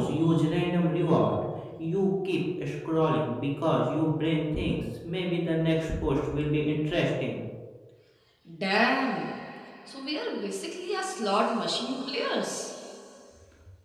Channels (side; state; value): both; identical; correlation 1.00